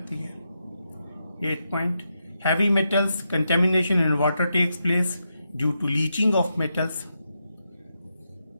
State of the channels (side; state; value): both; inverted; correlation -0.85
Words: है। 8 point, heavy metals contamination in water takes place due to leaching of metals.